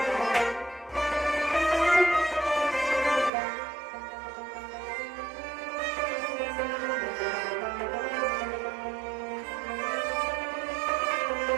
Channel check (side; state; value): left; drops out; at 3.3 s